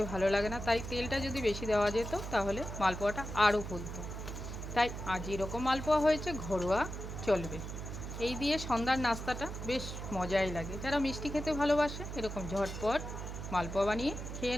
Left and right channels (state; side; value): noise; right; hum, 7 dB below the sound